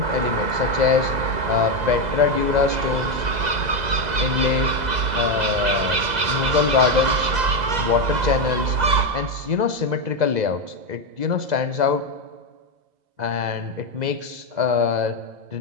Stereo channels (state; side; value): late; left; 2.0 ms